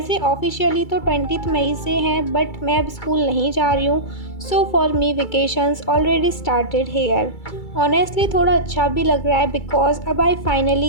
ऑफिशियली तो 20th मई से हैं, बट मैं अब स्कूल नहीं जा रही हूँ। So for me vacations already started here. Honestly थोड़ा अच्छा भी लग रहा है, बिकॉज अब I finally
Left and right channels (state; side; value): late; right; 2.3 ms